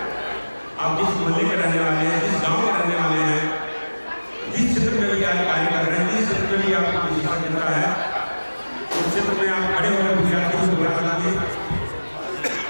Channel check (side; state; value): both; inverted; correlation -1.00